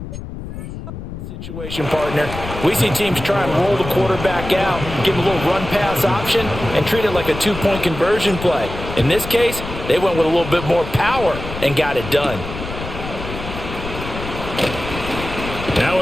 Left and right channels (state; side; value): noise; left; rumble, 9 dB below the sound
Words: situation, partner. We see teams try and roll the quarterback out, give him a little run-pass option, and treat it like a 2-point conversion play. In this case, they went with a little bit more power and got it done. Now